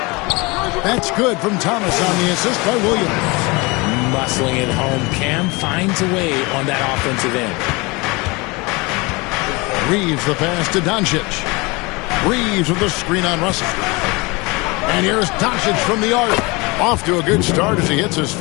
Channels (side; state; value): right; quieter; 25.7 dB